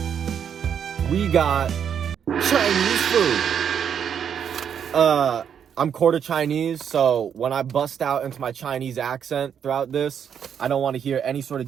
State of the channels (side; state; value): left; quieter; 8.1 dB